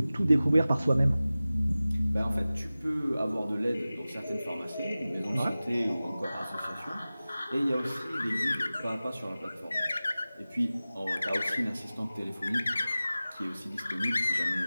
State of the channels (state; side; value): inverted; both; correlation -0.97